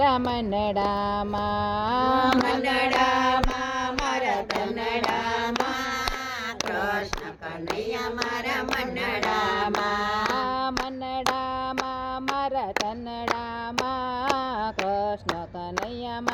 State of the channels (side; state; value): both; identical; correlation 1.00